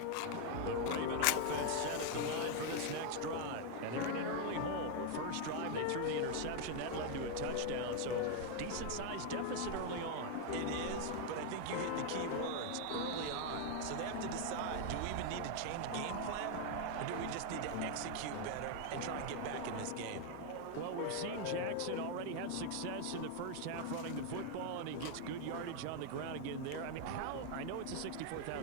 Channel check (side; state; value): both; different; correlation 0.01